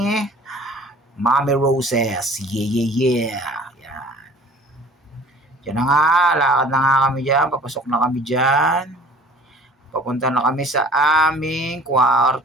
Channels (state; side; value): normal; both; correlation 0.48